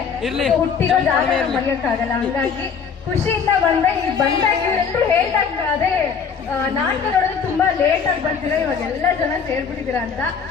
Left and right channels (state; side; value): quieter; right; 6.2 dB